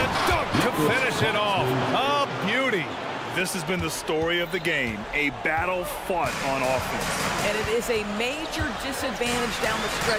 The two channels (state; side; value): identical; both; correlation 1.00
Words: dunk to finish it off. A beauty. This has been the story of the game, a battle fought on offense. And it is a major disadvantage down the